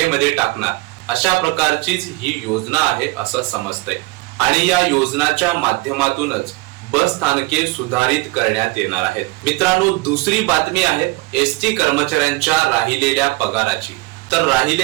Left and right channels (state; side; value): quieter; left; 22.8 dB